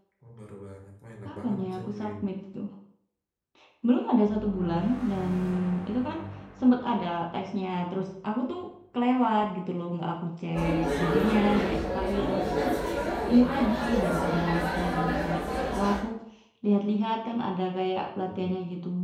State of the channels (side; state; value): both; identical; correlation 1.00